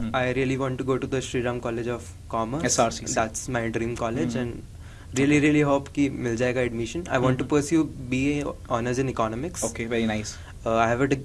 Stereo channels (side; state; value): both; identical; correlation 1.00